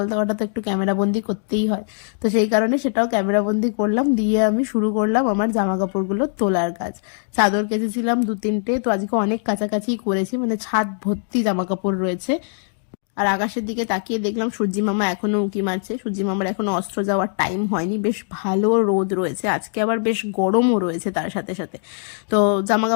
দেওয়াটা তো একটু ক্যামেরা বন্দি করতেই হয়, তো সেই কারণে সেটাও ক্যামেরা বন্দি করলাম, দিয়ে আমি শুরু করলাম আমার জামা কাপড়গুলো তোলার কাজ। চাদর কেচেছিলাম 2-3টে, তো আজকে অনেক কাছাকাছি করেছি, মানে ছাদ ভর্তি জামা কাপড় রয়েছে। আর আকাশের দিকে তাকিয়ে দেখলাম সূর্যি মামা এখনো উঁকি মারছে, সূর্যি মামার এখনো অস্ত্র যাওয়ার টাইম হয়নি, বেশ ভালো রোদ রয়েছে আজকে, আবার বেশ গরমও রয়েছে তার সাথে সাথে। তো জামা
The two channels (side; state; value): right; silent; digital silence